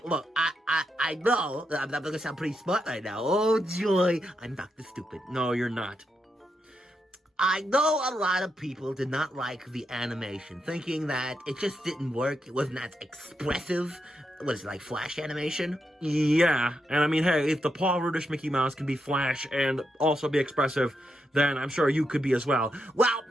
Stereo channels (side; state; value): both; normal; correlation 0.83